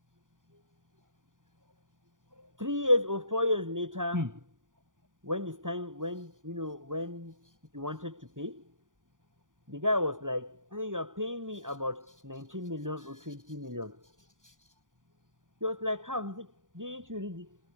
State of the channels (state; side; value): late; left; 0.88 ms